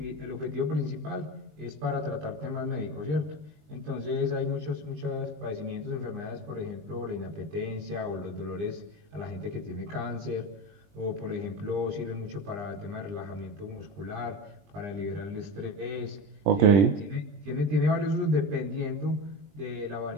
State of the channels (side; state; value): left; late; 20 ms